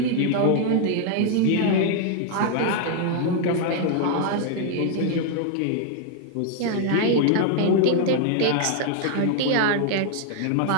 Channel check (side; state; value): both; different; correlation 0.00